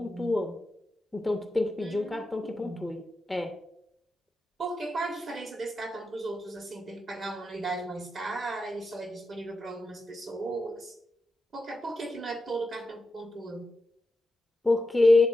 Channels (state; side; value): normal; both; correlation 0.89